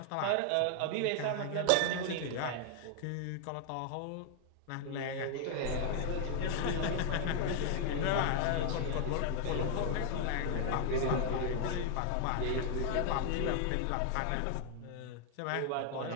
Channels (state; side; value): different; both; correlation 0.00